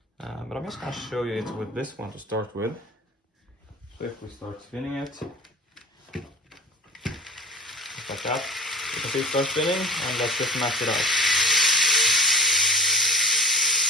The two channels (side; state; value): both; normal; correlation 0.38